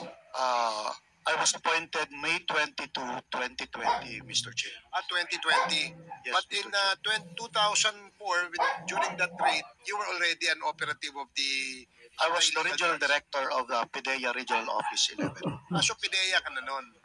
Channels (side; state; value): both; identical; correlation 1.00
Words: I was appointed May 22, 2020, Mr. Chair. 2020. Yes, But Mr. in 2004, during that raid, you were already an operative of the... I was the regional director of the PDEA Regional Office 11. So PDEA ka na nun.